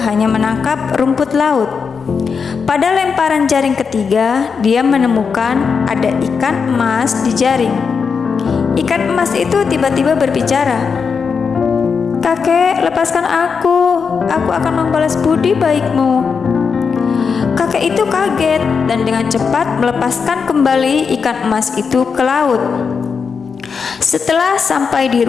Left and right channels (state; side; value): quieter; right; 5.7 dB